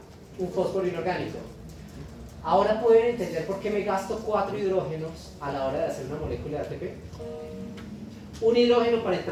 un fósforo inorgánico. Ahora pueden entender por qué me gasto 4 hidrógenos a la hora de hacer una molécula de ATP. Un hidrógeno para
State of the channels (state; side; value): identical; both; correlation 1.00